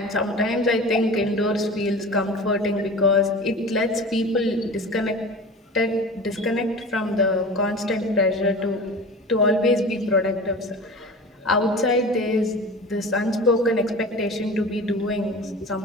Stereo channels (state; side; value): normal; both; correlation 0.35